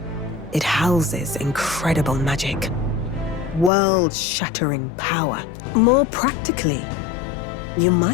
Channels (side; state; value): right; drops out; at 3.7 s